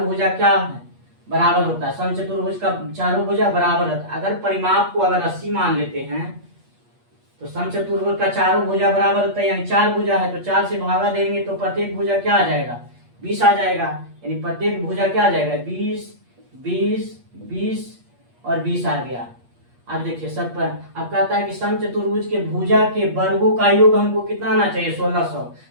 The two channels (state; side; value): late; left; 8.4 ms